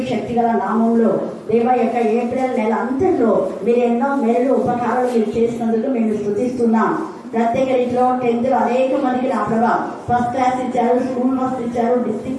శక్తిగల నామంలో దేవ యొక్క ఏప్రిల్ నెల అంతట్లో మీరు ఎన్నో మేలు ఉపకారాలు మీరు చేసినందుకు మేము స్తుతిస్తున్నాం. ప్రత్యేక రీతిలో 10th అనేక మందికి నా ప్రభా ఫస్ట్ క్లాస్ ఇచ్చారు, స్కూల్ ఫస్ట్ ఇచ్చారు,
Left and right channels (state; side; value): identical; both; correlation 1.00